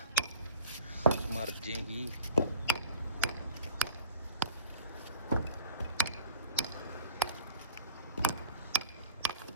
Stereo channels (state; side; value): inverted; both; correlation -0.46